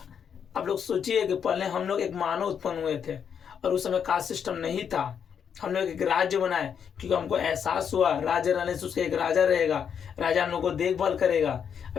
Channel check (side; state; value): right; quieter; 7.6 dB